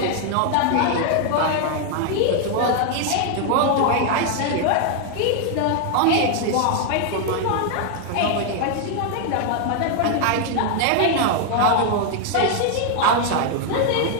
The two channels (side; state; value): both; different; correlation 0.00